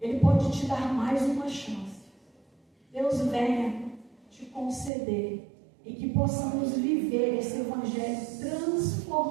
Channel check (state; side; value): drops out; left; at 4.9 s